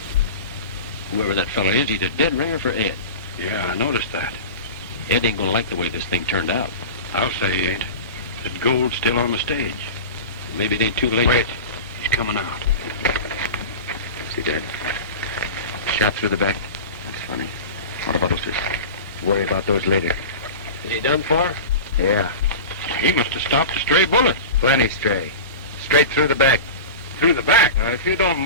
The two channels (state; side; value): inverted; both; correlation -0.30